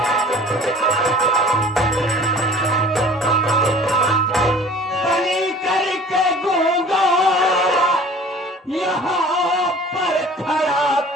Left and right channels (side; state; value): both; normal; correlation 0.46